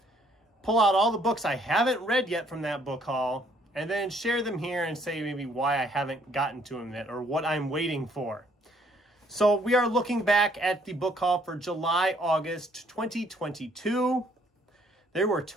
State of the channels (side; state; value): both; normal; correlation 0.65